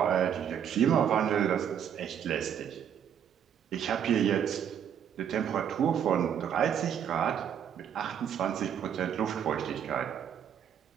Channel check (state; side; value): quieter; left; 8.8 dB